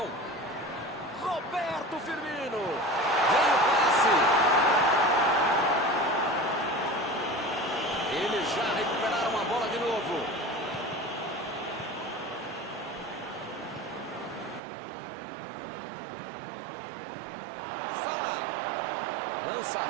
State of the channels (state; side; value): drops out; left; at 14.6 s